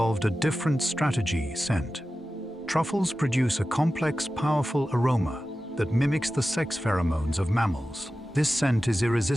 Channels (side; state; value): both; normal; correlation 0.94